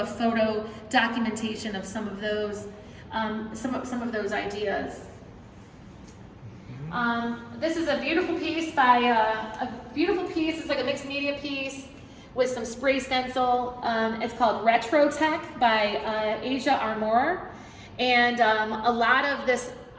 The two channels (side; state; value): both; identical; correlation 1.00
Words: photo documentation of some of those ideas. This is a beautiful piece It's like a mixed media piece with some spray stencil. It's called Retro Tech by Asia Armour. And a lot of this